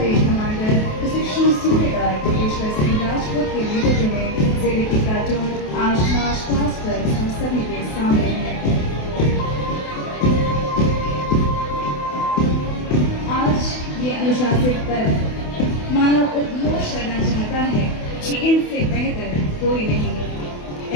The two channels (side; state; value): right; late; 28 ms